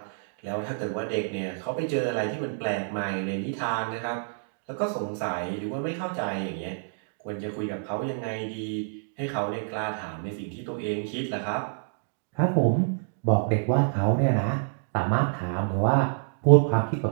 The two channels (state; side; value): silent; left; digital silence